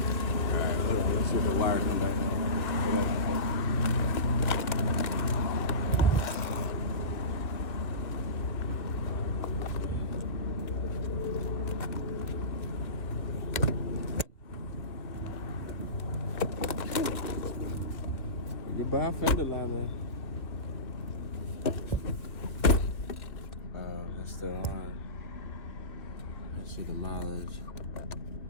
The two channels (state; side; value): late; right; 1.8 ms